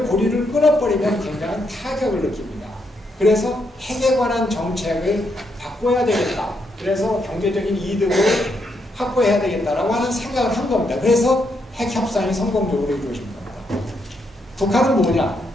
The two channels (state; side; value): normal; both; correlation 0.78